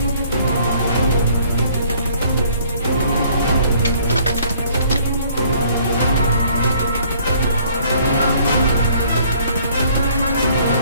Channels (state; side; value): inverted; both; correlation -0.59